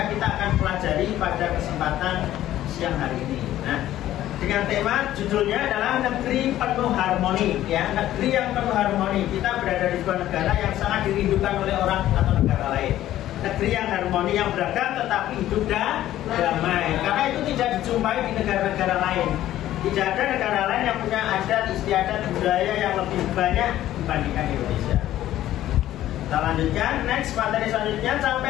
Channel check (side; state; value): right; quieter; 13.4 dB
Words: kita akan pelajari pada kesempatan siang hari ini. Nah, dengan tema judulnya adalah negeri penuh harmoni, ya, negeri yang penuh harmoni. Kita berada di sebuah negara yang sangat dirindukan oleh orang atau negara lain. Negeri yang harmoni, yang beragam tetapi hidup damai. Karena itu tidak dijumpai di negara-negara lain. Tidak ada negara lain yang punya adat, istiadat, budaya yang lebih banyak dibandingkan Indonesia. Kita lanjutkan, next materi selanjutnya,